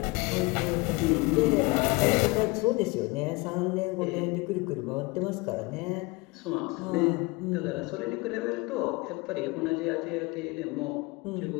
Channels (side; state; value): right; quieter; 25.6 dB